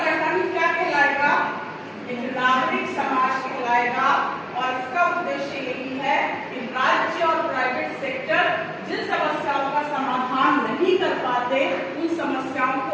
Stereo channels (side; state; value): both; identical; correlation 1.00